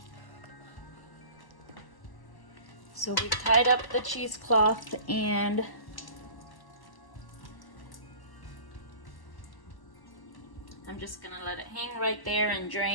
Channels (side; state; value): right; late; 1.1 ms